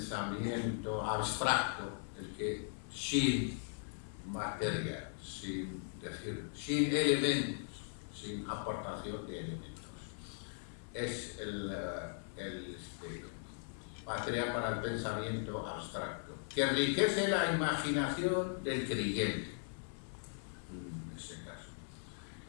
abstracto, el que sin materia, sin elementos, sin aportación de elementos, es material para el pensamiento abstracto, que enriquece la imaginación del creyente, en ese caso.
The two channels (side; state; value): right; silent; 52 dB below the other